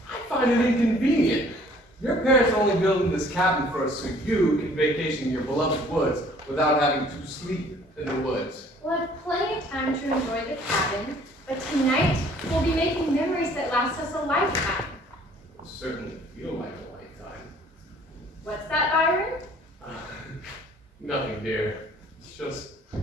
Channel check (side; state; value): both; normal; correlation 0.56